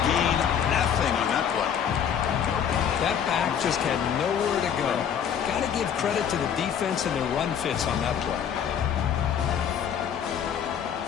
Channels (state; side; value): quieter; right; 8.3 dB